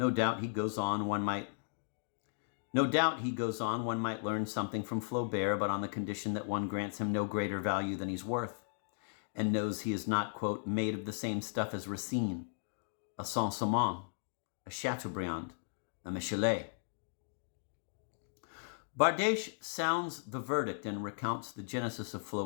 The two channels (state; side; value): silent; right; digital silence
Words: doubt he goes on, one might learn something from Flaubert, but on the condition that one grants him no greater value than he's worth, and knows he is not, quote, made of the same stuff as Racine, a Saint-Simon, a Chateaubriand, a Michelet. Bardèche sounds the verdict and recounts the genesis of